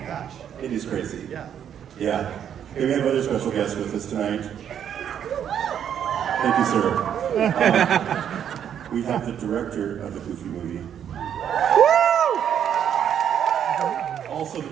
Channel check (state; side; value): quieter; left; 9.1 dB